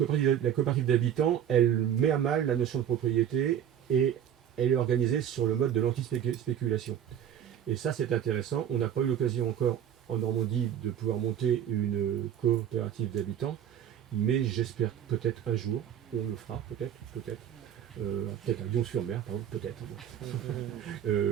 d'habitants, elle met à mal la notion de propriété et elle est organisée sur le mode de l'anti-spéculation. Et ça, c'est intéressant. On n'a pas eu l'occasion encore en Normandie de pouvoir monter une coopérative d'habitants, mais j'espère peut-être un jour, on le fera, peut-être. Peut-être à Lyon-sur-Mer, peut-être,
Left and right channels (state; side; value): quieter; left; 9.8 dB